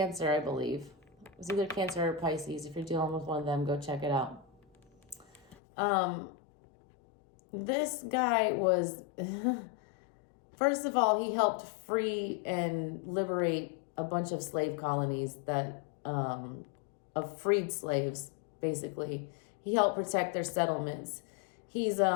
I believe. It was either Cancer or Pisces. If you're dealing with one of them, go check it out. This guy was, first of all, he helped free and liberate a bunch of slave colonies that, of freed slaves, basically. He helped protect their settlements. He's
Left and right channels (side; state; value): right; drops out; at 5.6 s